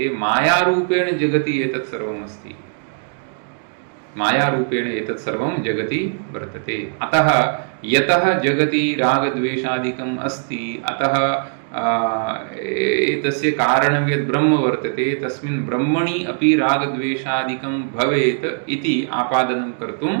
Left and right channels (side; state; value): left; silent; digital silence